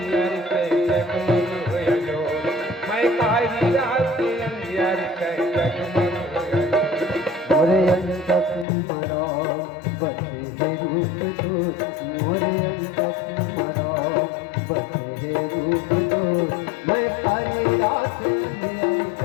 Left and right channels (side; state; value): right; drops out; at 8.7 s